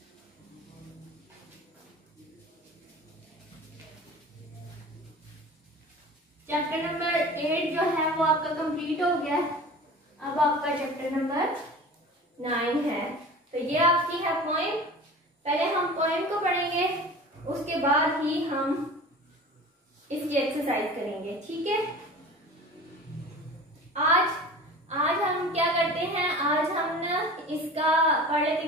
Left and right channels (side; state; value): both; normal; correlation 0.38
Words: चैप्टर नंबर 8 जो है वो आपका कंप्लीट हो गया। अब आपका चैप्टर नंबर 9 है। तो ये आपकी है पोएम। पहले हम पोएम को पढ़ेंगे, उसके बाद ही हम इसकी एक्सरसाइज करेंगे, ठीक है। आज हम क्या करते हैं, आज हम ना इसका पढ़ लेते